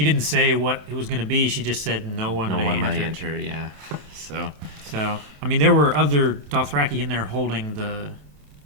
didn't say what it was going to be. She just said no one may enter. Yeah. So I mean, there were other Dothraki in there holding the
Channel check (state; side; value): late; left; 27 ms